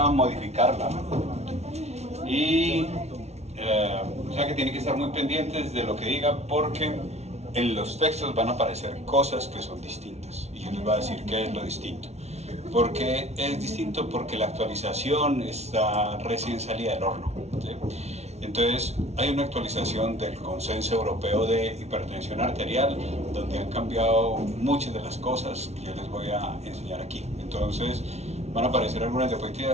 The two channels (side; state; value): left; late; 0.31 ms